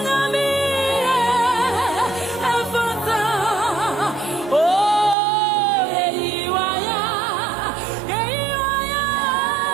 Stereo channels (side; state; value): left; drops out; at 5.2 s